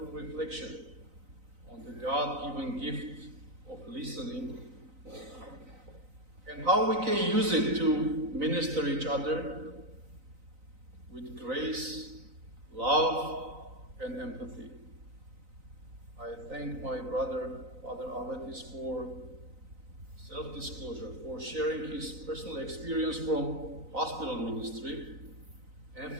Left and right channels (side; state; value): left; late; 3.9 ms